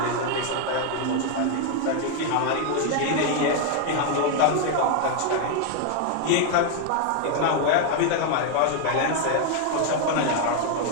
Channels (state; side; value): different; both; correlation 0.01